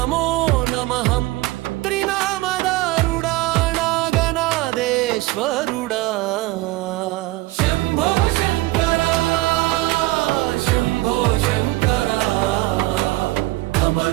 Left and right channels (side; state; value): left; quieter; 19.2 dB